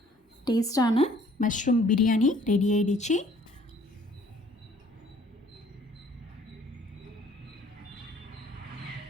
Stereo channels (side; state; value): both; normal; correlation 0.58